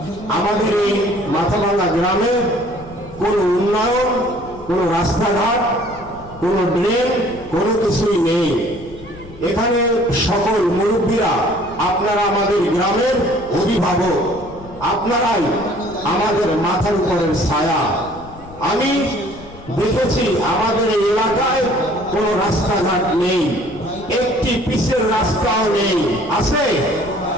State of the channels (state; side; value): noise; left; rumble, 18 dB below the sound